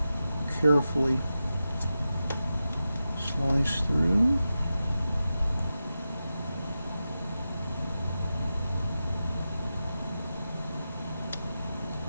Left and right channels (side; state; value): both; inverted; correlation -0.92